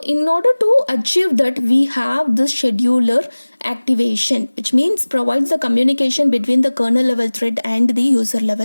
order to achieve that, we have this scheduler activation, which means provides the communication between the kernel level thread and the user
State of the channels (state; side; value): inverted; both; correlation -1.00